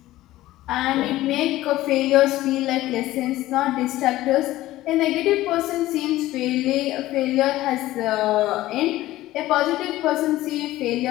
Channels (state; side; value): quieter; right; 16.0 dB